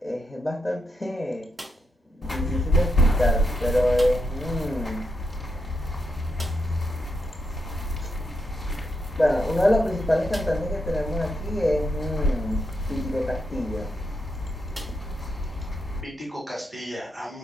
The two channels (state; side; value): normal; both; correlation 0.82